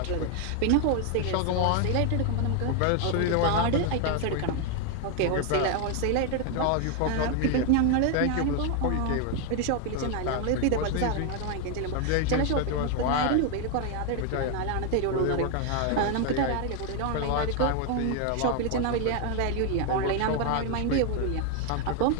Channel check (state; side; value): different; both; correlation 0.01